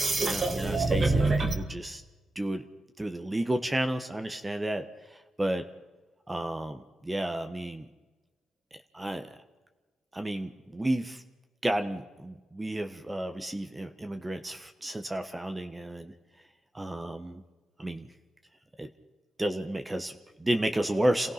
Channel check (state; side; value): normal; both; correlation 0.93